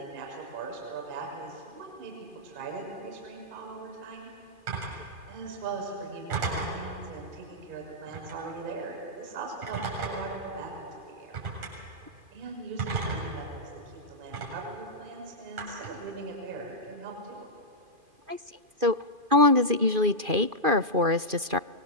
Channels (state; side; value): late; left; 2.4 ms